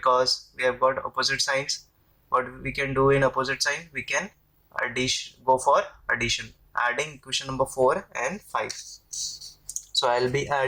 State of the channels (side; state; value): both; identical; correlation 1.00